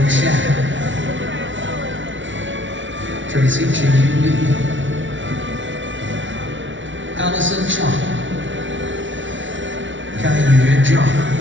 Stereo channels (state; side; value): late; left; 0.55 ms